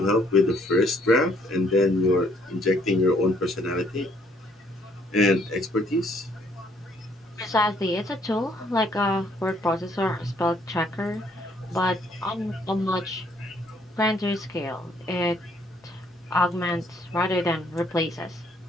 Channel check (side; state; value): both; normal; correlation 0.66